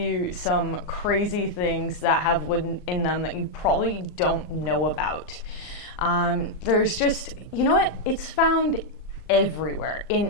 some crazy things that have wood in them that you probably don't know about. There's just, you know what, it's found everywhere, in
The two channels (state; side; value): late; right; 38 ms